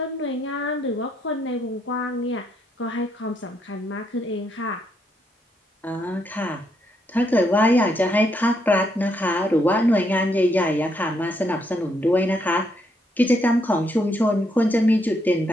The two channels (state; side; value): normal; both; correlation 0.76